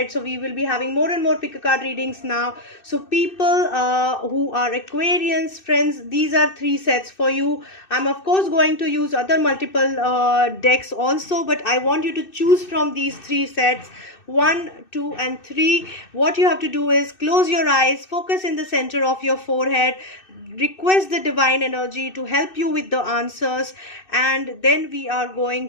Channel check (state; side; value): late; right; 2.6 ms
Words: So we will be having more and more pick a card readings now. So people who are Aquarians, friends, these are 3 sets for you. I'm of course going to use other multiple decks also, but I want you to choose from these 3 sets, 1, 2 and 3. What you have to do is close your eyes, focus in the center of your forehead, request the divine energy to help you with the answers, and then we are